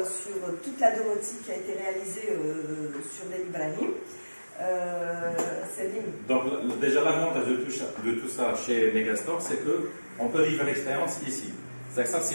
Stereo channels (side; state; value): both; inverted; correlation -1.00